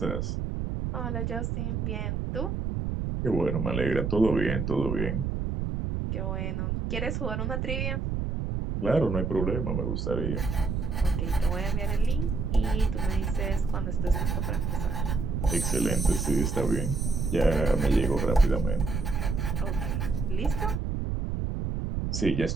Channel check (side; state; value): right; noise; rumble, 1 dB below the sound